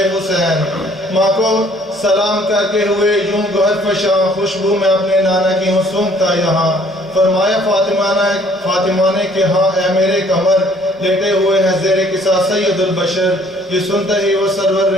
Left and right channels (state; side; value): noise; right; rumble, 29 dB below the sound